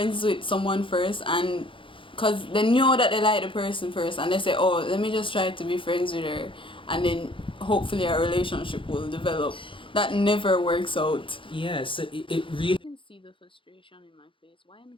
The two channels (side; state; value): right; late; 0.25 ms